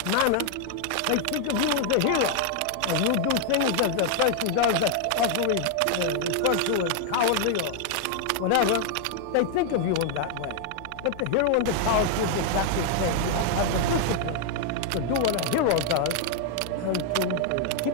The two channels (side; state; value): both; different; correlation 0.00